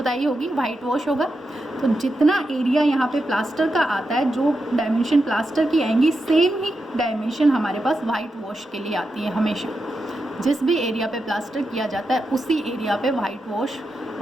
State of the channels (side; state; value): both; normal; correlation 0.87